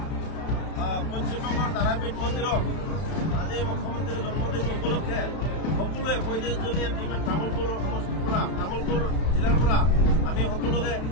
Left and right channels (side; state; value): right; late; 31 ms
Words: পশ্চিমবংগৰ তাৰাপীঠ মন্দিৰত আজি মুখ্যমন্ত্ৰীৰ জন্মদিন উপলক্ষে সকলোৱে 35জনীয়া টীমে তামুলপুৰ সমষ্টিৰ পৰা তামুলপুৰ জিলাৰ পৰা আমি সকলোকে